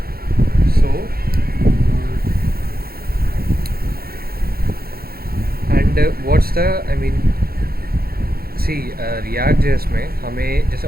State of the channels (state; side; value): late; left; 0.44 ms